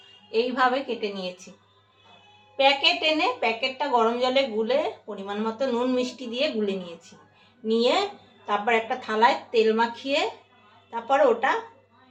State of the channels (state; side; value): identical; both; correlation 1.00